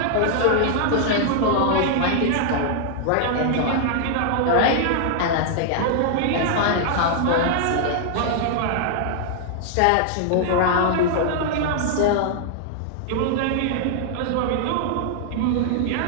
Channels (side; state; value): both; different; correlation -0.01